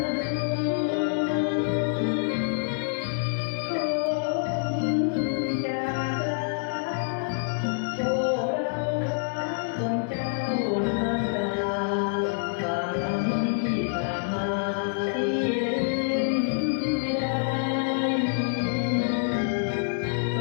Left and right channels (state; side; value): silent; right; digital silence